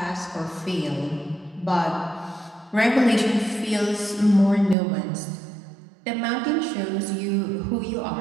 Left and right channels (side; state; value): left; drops out; at 4.8 s